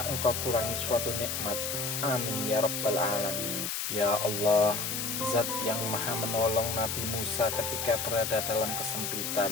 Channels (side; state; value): left; noise; hiss, 2 dB below the sound